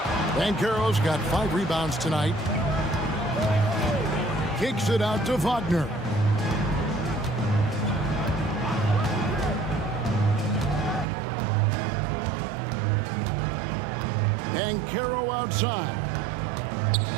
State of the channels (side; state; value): left; drops out; at 11.1 s